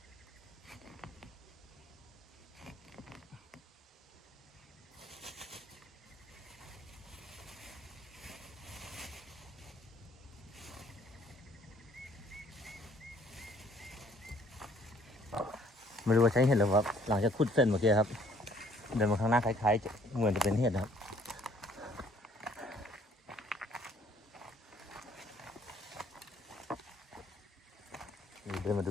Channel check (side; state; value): both; normal; correlation 0.60